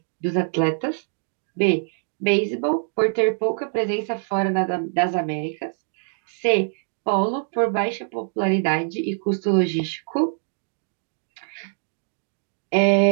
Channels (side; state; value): left; silent; 63 dB below the other